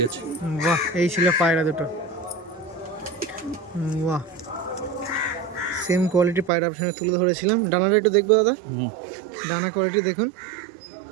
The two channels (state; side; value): drops out; left; at 6.5 s